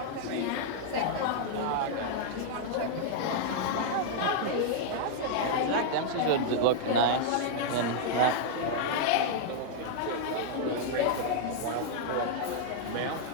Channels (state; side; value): different; both; correlation -0.01